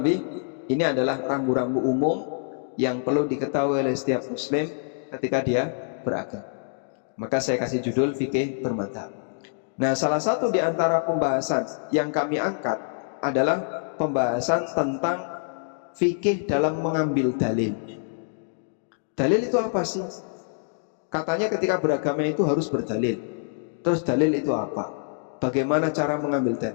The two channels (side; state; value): right; silent; digital silence